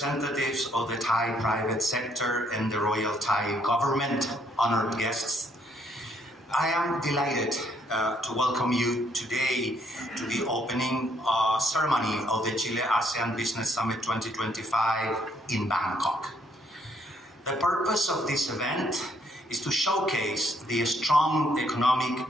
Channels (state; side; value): normal; both; correlation 0.69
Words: of the Thai private sector and the Royal Thai government, honored guests. I am delighted to welcome you today to the opening ceremony of the Chile-ASEAN Business Summit 2025 in Bangkok. The purpose of this event is to showcase the strong